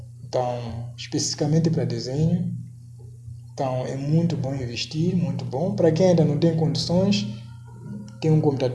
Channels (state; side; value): identical; both; correlation 1.00